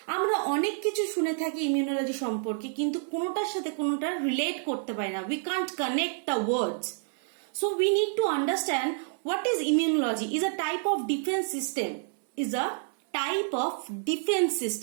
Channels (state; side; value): silent; left; digital silence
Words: আমরা অনেক কিছু শুনে থাকি ইমিউনোলজি সম্পর্কে কিন্তু কোনোটার সাথে কোনোটা রিলেট করতে পারি না। We can't connect the words. So we need to understand what is immunology. Is a type of defence system, is a type of defence